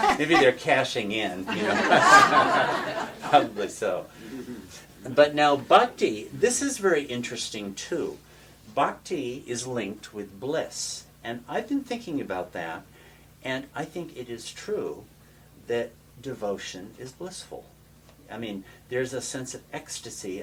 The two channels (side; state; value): both; identical; correlation 1.00